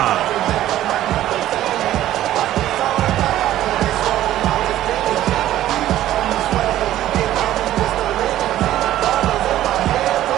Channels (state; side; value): quieter; left; 13.4 dB